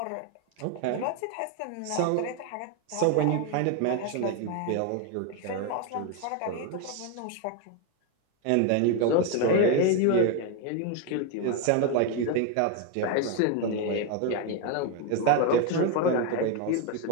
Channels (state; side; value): different; both; correlation 0.02